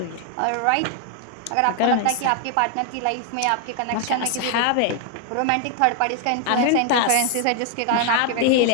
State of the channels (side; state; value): both; different; correlation 0.00